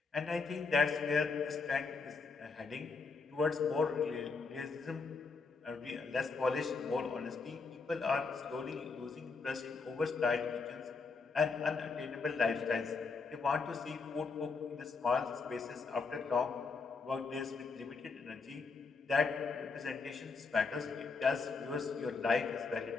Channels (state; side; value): quieter; right; 4.5 dB